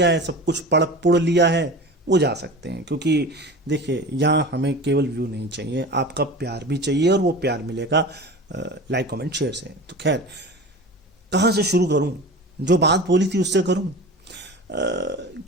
है, सब कुछ पढ़ पुढ़ लिया है, वो जा सकते हैं। क्योंकि देखिए, यहाँ हमें केवल व्यू नहीं चाहिए, आपका प्यार भी चाहिए, और वो प्यार मिलेगा लाइक कमेंट शेयर से। तो खैर, कहाँ से शुरू करूं? जो बात बोली थी उससे करूं।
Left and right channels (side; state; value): both; normal; correlation 0.34